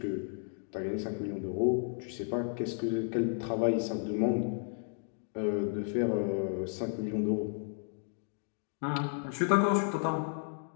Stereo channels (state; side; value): silent; right; 56 dB below the other